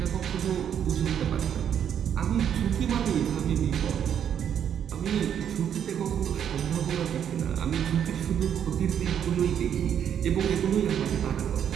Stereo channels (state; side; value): quieter; left; 9.0 dB